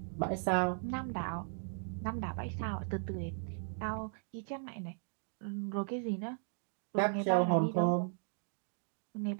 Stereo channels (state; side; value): silent; left; digital silence